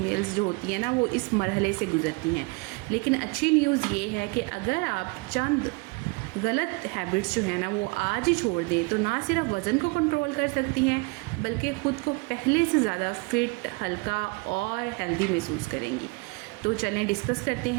जो होती हैं ना वो इस मरहले से गुज़रती हैं। लेकिन अच्छी न्यूज़ ये है कि अगर आप चंद गलत हैबिट्स जो है ना वो आज ही छोड़ दें तो ना सिर्फ वज़न को कंट्रोल कर सकती हैं बल्कि ख़ुद को पहले से ज़्यादा फिट, हल्का और हेल्दी महसूस करेंगी। तो चलें डिस्कस करते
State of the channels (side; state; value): left; quieter; 28.0 dB